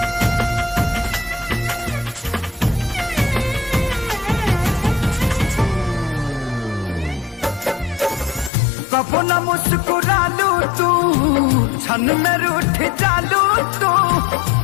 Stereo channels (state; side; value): drops out; right; at 8.5 s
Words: कबो न मुस्कुरालू तू, क्षण में रूठ जालू तू।